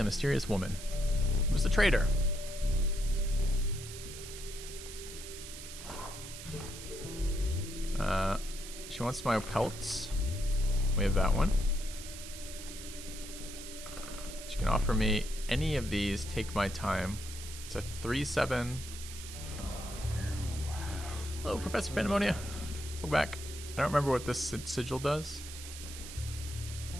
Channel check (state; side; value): noise; right; hiss, 11 dB below the sound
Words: mysterious woman. It was the trader. She wants my pelts. We have that one. She can offer me any of these. Take my time. It's a 3/7. Hello, Professor Pandemonia. Go back. I don't remember what this sigil does.